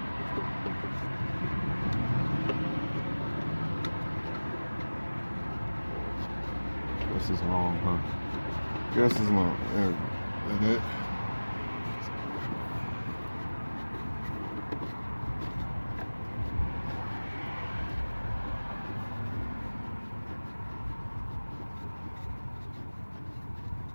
This is long, huh? This is long. There we go. Like that.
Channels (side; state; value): both; inverted; correlation -1.00